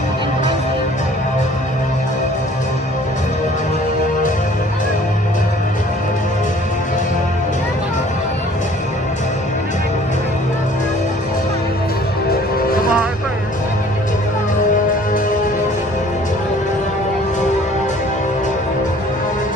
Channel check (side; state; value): both; normal; correlation 0.53